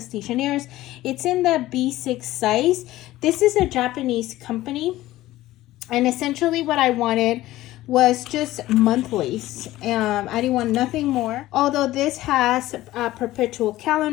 Stationeers. It's in the B6 size. This is a Japanese company. And essentially what I wanted was just monthlies. I didn't want nothing more. Although this has a perpetual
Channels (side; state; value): right; quieter; 16.1 dB